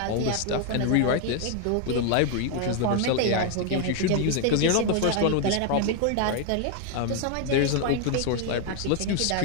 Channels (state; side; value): different; both; correlation 0.01